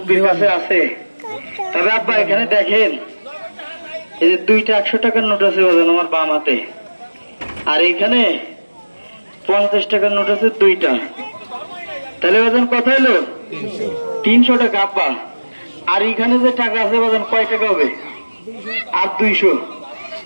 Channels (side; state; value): both; inverted; correlation -1.00